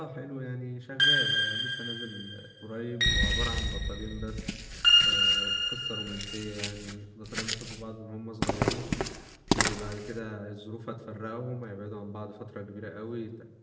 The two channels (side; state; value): both; identical; correlation 1.00